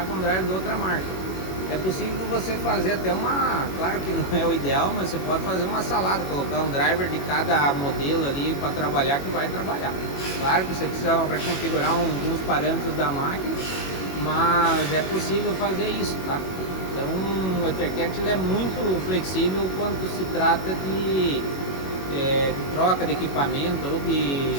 com um driver de outra marca. É possível você fazer até claro que não é o ideal, mas você pode fazer uma salada, colocar um driver de cada modelo ali para trabalhar que vai trabalhar. Claro que você precisa reconfigurar alguns parâmetros da máquina, mas é possível fazer isso, tá? Então o EtherCAT é muito flexível quando se trata de troca de equipamento ou de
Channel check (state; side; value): late; right; 21 ms